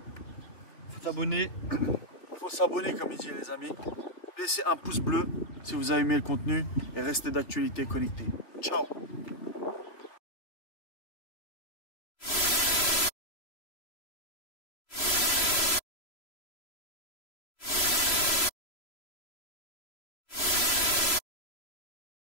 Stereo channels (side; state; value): right; late; 3.0 ms